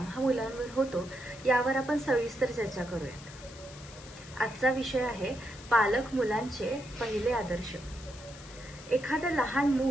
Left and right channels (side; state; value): left; noise; hiss, 18 dB below the sound